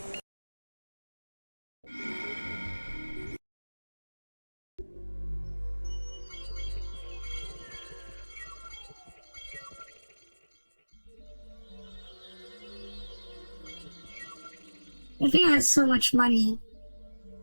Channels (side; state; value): both; inverted; correlation -1.00